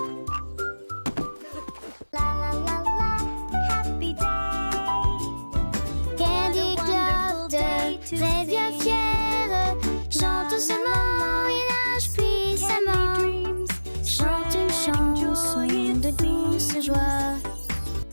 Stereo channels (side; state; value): both; inverted; correlation -1.00